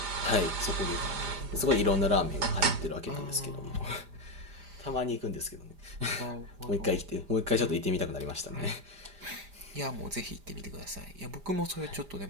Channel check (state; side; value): late; left; 5.0 ms